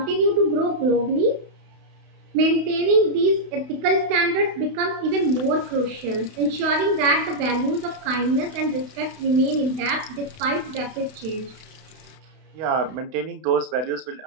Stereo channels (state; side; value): late; left; 32 ms